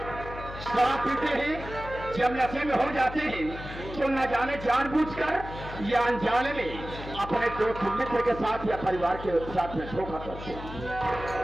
शराब पीते हैं, जब नशे में हो जाते हैं तो न जाने जानबूझकर या अनजाने में अपने दोस्त मित्र के साथ या परिवार के साथ में धोखा करते हैं।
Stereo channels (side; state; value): left; noise; hum, 11 dB below the sound